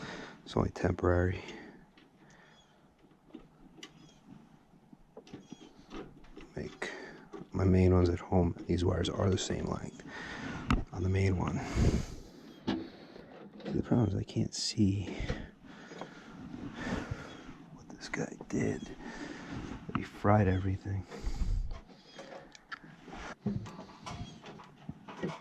it's only temporary. Make my main ones at home. These wires are the same length on the main one. The problem is I can't see what this guy did. He fried everything.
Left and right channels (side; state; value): both; identical; correlation 1.00